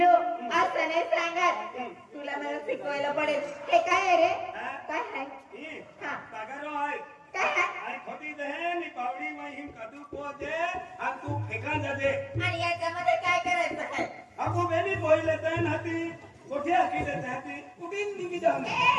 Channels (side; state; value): both; identical; correlation 1.00